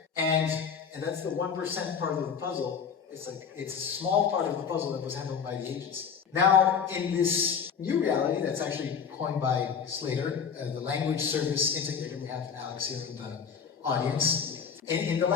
And that's the 1% part of the puzzle. It's a small part of the puzzle that was handled by the agency. Now, in this new reality that's actually coined by Slater, the language service integrator, we have Alex here in the audience. In the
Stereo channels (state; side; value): quieter; right; 6.8 dB